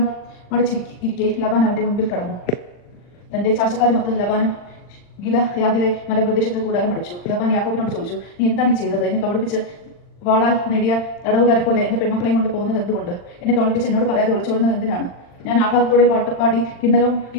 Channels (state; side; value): late; right; 40 ms